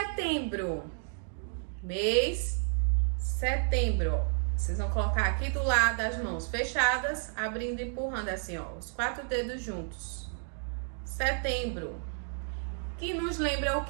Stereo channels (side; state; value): left; silent; 57 dB below the other